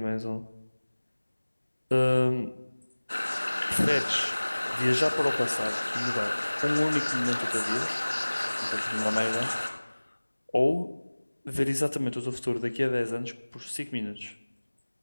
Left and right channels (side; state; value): both; inverted; correlation -1.00